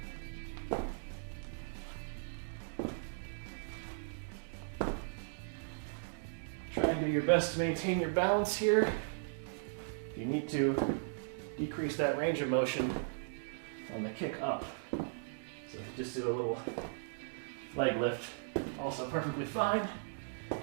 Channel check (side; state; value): left; silent; digital silence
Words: Try and do your best to maintain your balance here. You need to decrease that range of motion on the kick up. So if you just do a little leg lift, also perfectly fine.